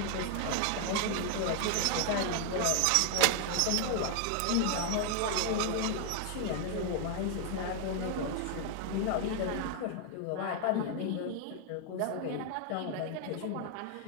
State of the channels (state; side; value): different; both; correlation 0.00